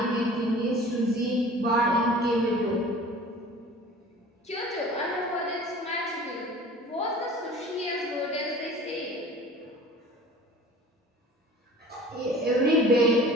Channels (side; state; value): both; normal; correlation 0.44